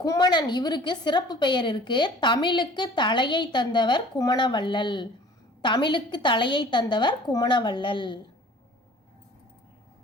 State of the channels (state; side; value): normal; both; correlation 0.48